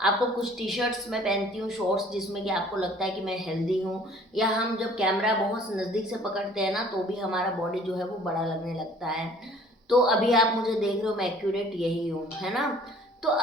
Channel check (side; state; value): both; normal; correlation 0.53